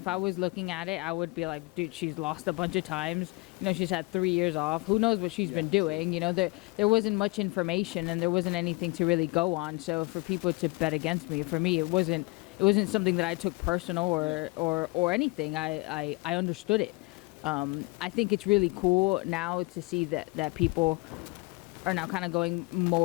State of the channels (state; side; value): quieter; right; 25.4 dB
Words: I was looking at it, I would be like, dude, she's lost a bunch of times. She's had 3 years off. Who knows what she's been doing? There wasn't much information, and there wasn't anything to really go on. So for people to bet against me, for me, it wasn't something that I took personal or anything. I understood it. I think it's really cool now to see that people are now kind of going